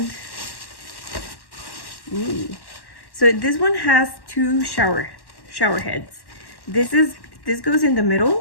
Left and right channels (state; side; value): late; right; 1.1 ms